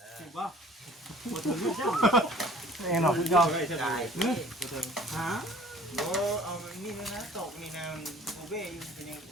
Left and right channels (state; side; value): normal; both; correlation 0.51